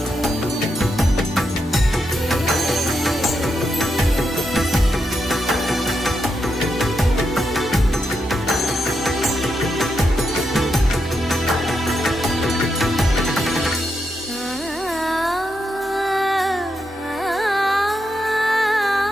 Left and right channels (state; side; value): normal; both; correlation 0.83